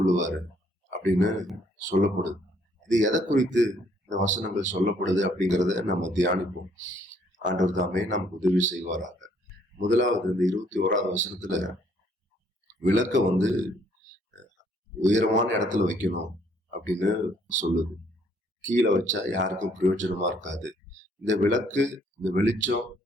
அப்படின்னு சொல்லப்படுது. இது எதை குறித்து இந்த வசனங்கள் சொல்லப்படுது அப்படிங்கிறத நம்ம தியானிப்போம். ஆண்டவர் தாமே நமக்கு உதவி செய்வாராக. முதலாவது இந்த 21வது வசனத்துல விளக்க உயரமான இடத்துல வைக்கணும் அப்படின்னு சொல்லுது. கீழே வச்சா யாருக்கும் பிரயோஜனமா இருக்காது. இந்த விளக்கு, இந்த வெளிச்சம்,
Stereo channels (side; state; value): both; normal; correlation 0.65